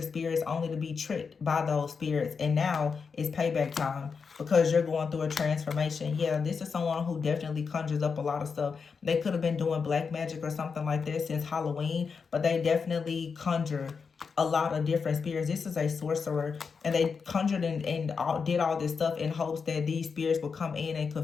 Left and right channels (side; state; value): right; quieter; 5.5 dB